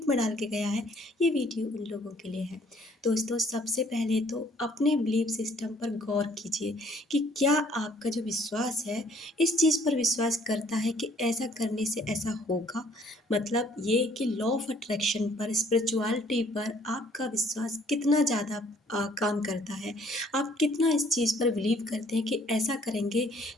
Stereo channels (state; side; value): normal; both; correlation 0.60